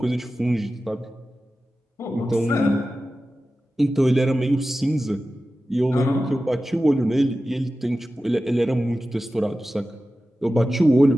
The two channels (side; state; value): both; normal; correlation 0.94